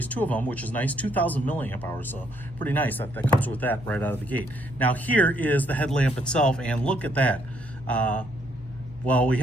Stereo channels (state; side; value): normal; both; correlation 0.70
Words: two of them, which is nice, 2000 milliamp hours, so pretty nice that comes with that right out of the gate. Now here is the headlamp itself, and look at that. Well, we